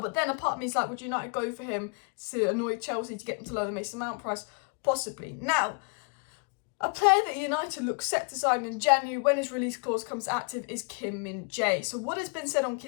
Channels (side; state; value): right; quieter; 38.7 dB